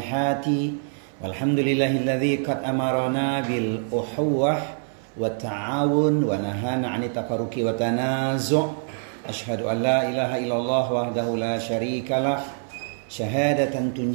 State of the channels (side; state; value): left; silent; 62 dB below the other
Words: Walhamdulillahilladzi qad amarana bil uhuwah wa ta'awun wa nahana 'anit tafarruqi wa tanazu'. Ashhadu an la ilaha illallah wahdahu la syarikalah syahadatan